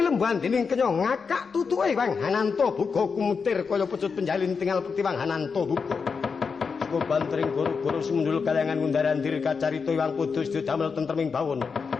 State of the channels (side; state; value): right; quieter; 5.4 dB